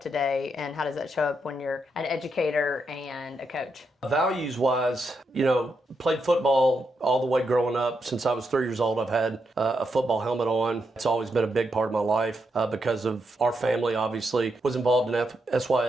today? And how does that show up when you're an educator and a coach? Values-wise, played football all the way growing up. Since I was 3 years old, I've had a football helmet on. It's always been a big part of my life because of our family, obviously. Was involved in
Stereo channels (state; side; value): normal; both; correlation 0.82